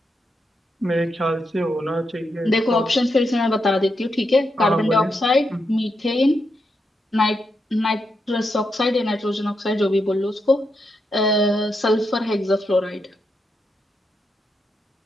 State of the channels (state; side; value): normal; both; correlation 0.83